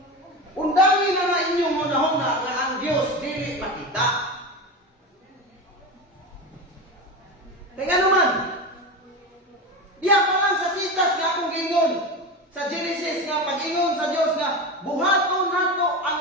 Undangi na inyong hunahuna nga ang Dios dili makita. Kaya naman, diya pa lang sa sitas nga akong gingon sa Genesis nga pag-ingon sa Dios nga buhaton nato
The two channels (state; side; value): normal; both; correlation 0.23